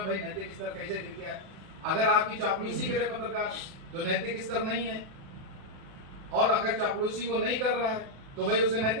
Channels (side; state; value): left; late; 36 ms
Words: भाई नैतिक स्तर कैसे गिर गया? अगर आपकी चापलूसी करे पत्रकार तो नैतिक स्तर नहीं है, और अगर चापलूसी वो नहीं कर रहा है तो भाई उसका